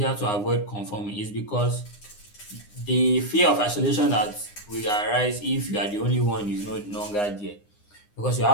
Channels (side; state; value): right; late; 9.8 ms